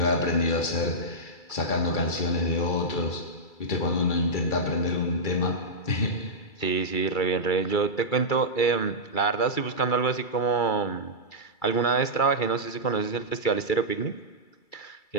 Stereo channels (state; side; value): late; right; 2.3 ms